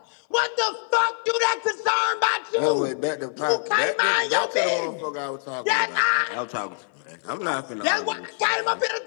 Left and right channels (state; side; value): silent; right; 56 dB below the other